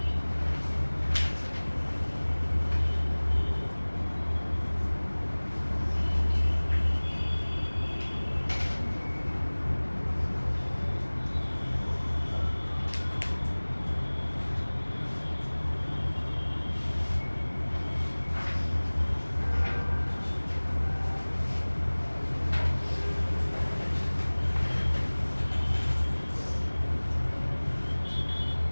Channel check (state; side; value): inverted; both; correlation -1.00